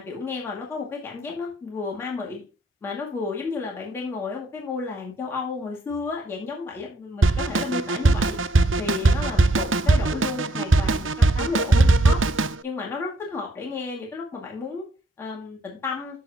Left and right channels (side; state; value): both; normal; correlation 0.71